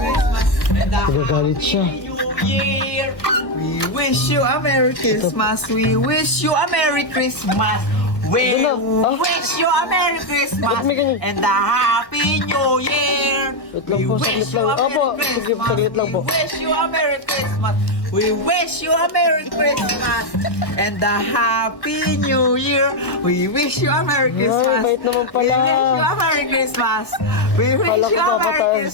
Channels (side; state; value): right; late; 1.3 ms